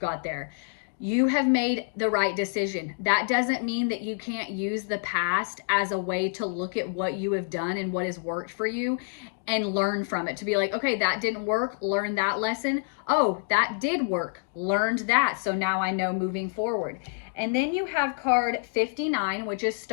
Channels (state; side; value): silent; right; digital silence